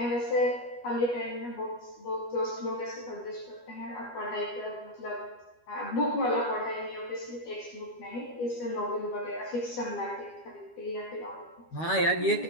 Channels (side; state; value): right; late; 12 ms